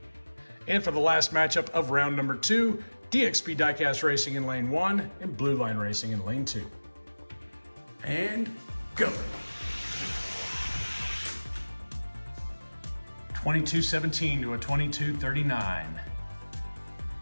And for the last matchup of round number 2, DXP Diecast Racing in lane 1 and Blueline Racing in lane 2. And go. 2217 to a 2239.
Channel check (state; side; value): inverted; both; correlation -1.00